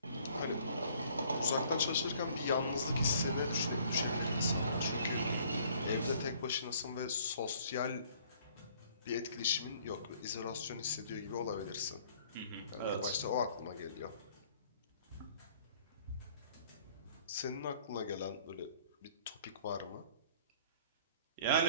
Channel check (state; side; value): inverted; both; correlation -0.57